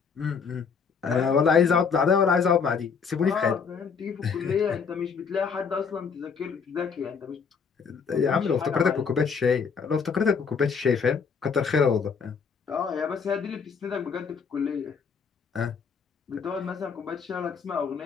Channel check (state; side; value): quieter; right; 5.9 dB